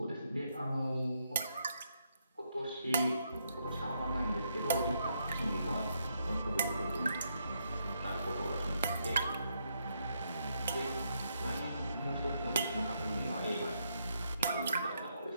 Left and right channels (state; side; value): inverted; both; correlation -0.78